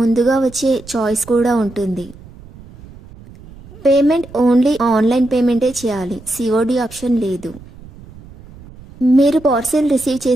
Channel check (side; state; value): right; noise; rumble, 20 dB below the sound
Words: వచ్చే చాయిస్ కూడా ఉంటుంది. పేమెంట్ ఓన్లీ ఆన్లైన్ పేమెంటే చేయాలి, సిఓడి ఆప్షన్ లేదు. మీరు పార్సిల్ రిసీవ్